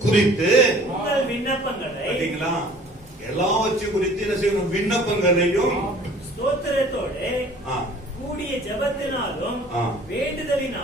குறித்து உங்கள் விண்ணப்பங்களை பாத்தீங்களா, எல்லாவற்றையும் குறித்து என்ன செய்யணும்? விண்ணப்பங்களையும் ஸ்தோத்திரத்தோடு ஆ, கூடிய ஜெபத்தினாலும் ஆ.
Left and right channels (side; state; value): both; normal; correlation 0.51